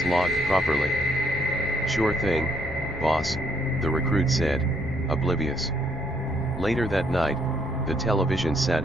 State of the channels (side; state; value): both; normal; correlation 0.69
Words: logged properly." "Sure thing, boss," the recruit said, oblivious. Later that night, the television